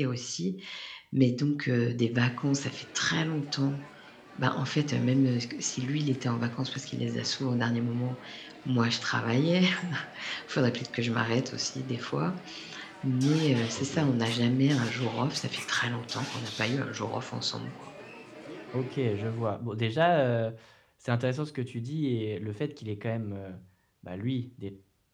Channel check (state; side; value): identical; both; correlation 1.00